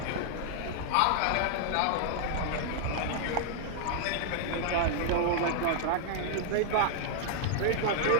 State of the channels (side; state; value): both; different; correlation -0.01